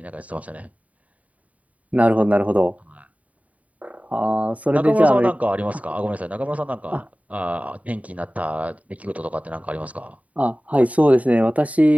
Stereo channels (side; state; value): left; late; 0.069 ms